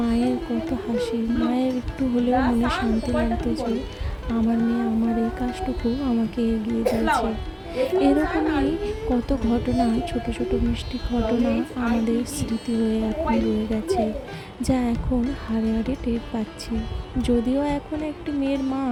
মায়ের কত হাসি, মায়ের একটু হলেও মনে শান্তি লাগতো যে আমার মেয়ে আমার এই কাজটুকু আমাকে এগিয়ে দিয়েছে। এরকমই কত ঘটনা, ছোট ছোট মিষ্টি ঘটনা আমাদের স্মৃতি হয়ে এখন রয়ে গেছে, যা এখন হাড়ে হাড়ে টের পাচ্ছি। যদিও এখন একটি মেয়ের মা,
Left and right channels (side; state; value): both; identical; correlation 1.00